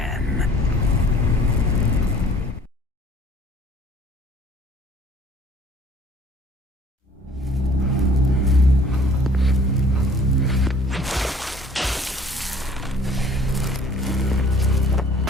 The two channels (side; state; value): both; normal; correlation 0.53